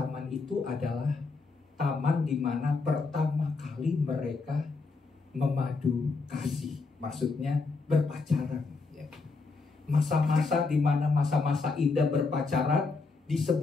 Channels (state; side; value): quieter; right; 4.1 dB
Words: itu adalah taman di mana pertama kali mereka memadu kasih, maksudnya berpacaran. Ya. Masa-masa di mana masa-masa indah berpacaran di